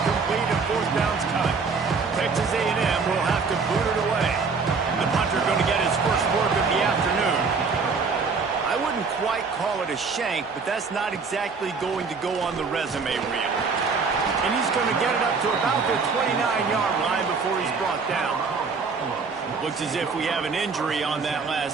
and 4th down's coming. Texas A&M will have to boot it away. The punter going to get his first work of the afternoon. I wouldn't quite call it a shank, but that's not exactly going to go on the resume reel. And he's going to get it up to about the 29-yard line before he's brought down. Looks as if we have an injury on that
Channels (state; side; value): quieter; left; 4.9 dB